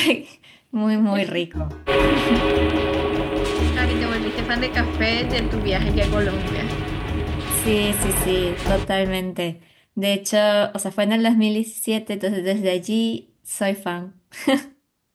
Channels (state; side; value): identical; both; correlation 1.00